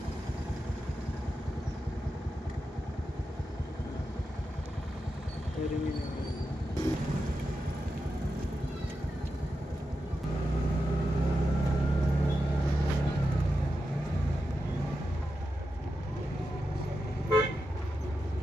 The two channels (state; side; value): normal; both; correlation 0.89